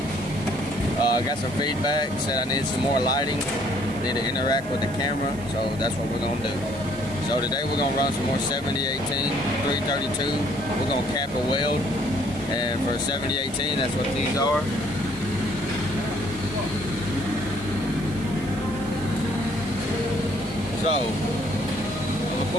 I got some feedback, said I needed some more lighting, need to interact with the camera, so that's what we're going to do. So today we're going to run some more 7018 332. We're going to cap a weld, and for 7018 that's what these are. So I'm going to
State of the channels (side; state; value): right; noise; hiss, 21 dB below the sound